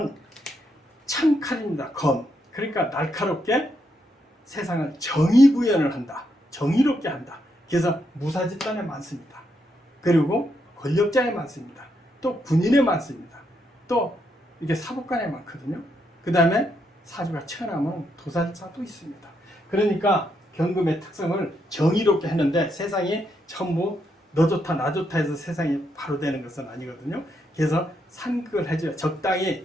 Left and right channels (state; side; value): normal; both; correlation 0.79